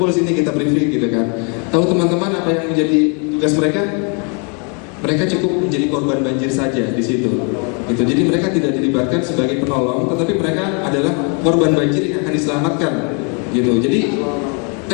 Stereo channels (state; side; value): quieter; right; 36.2 dB